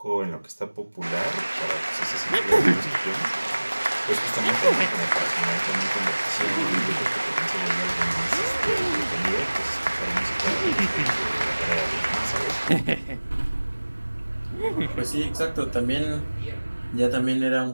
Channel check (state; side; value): inverted; both; correlation -1.00